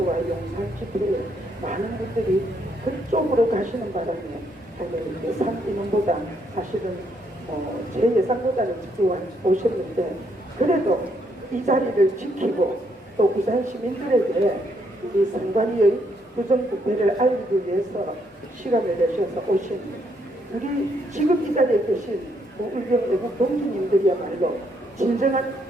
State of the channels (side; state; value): both; normal; correlation 0.73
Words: 용산 집회에 많은 분들이 그쪽으로 가시는 바람에 예상 인원보다 사실은 제 예상보다는 적게 오셨는데, 그래도 이 자리를 지키고 또 부산 시민들에게 우리 선관위의 부정부패를 알리기 위해서 시간을 내셔서 오신 우리 지금 이 자리에 계신 우울경 애국 동지님들이야말로 진정한